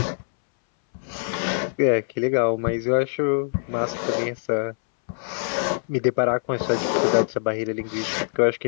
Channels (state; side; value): silent; right; 63 dB below the other